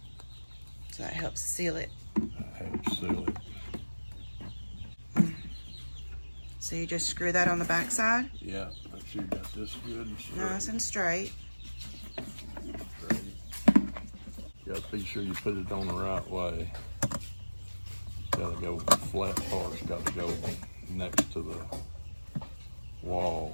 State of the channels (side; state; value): both; inverted; correlation -1.00